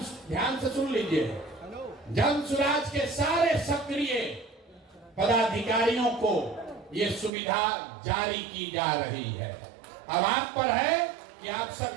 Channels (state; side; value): drops out; left; at 7.3 s